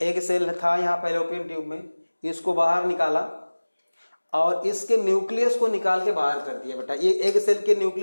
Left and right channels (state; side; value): inverted; both; correlation -1.00